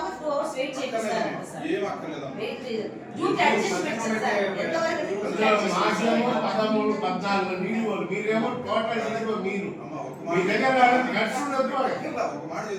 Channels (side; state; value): both; identical; correlation 1.00